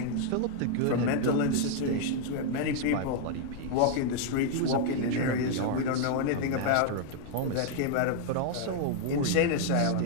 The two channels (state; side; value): different; both; correlation 0.00